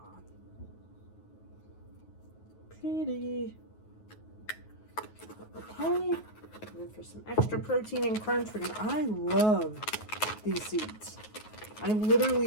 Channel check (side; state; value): right; late; 9.4 ms